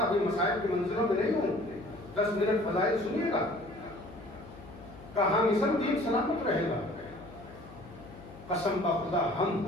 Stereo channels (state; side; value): noise; left; hum, 18 dB below the sound